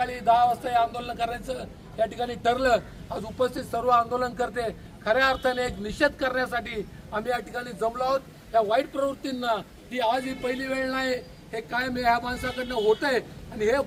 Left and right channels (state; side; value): identical; both; correlation 1.00